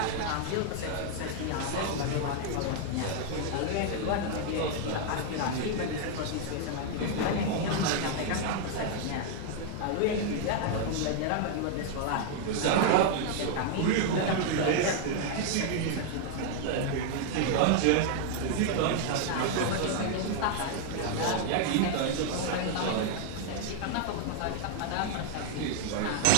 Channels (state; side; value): different; both; correlation 0.00